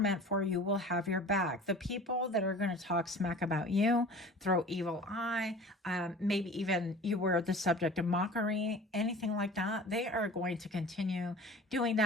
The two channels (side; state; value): both; normal; correlation 0.42